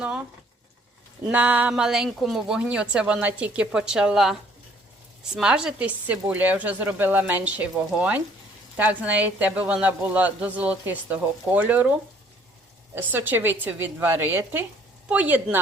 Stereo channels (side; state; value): both; normal; correlation 0.60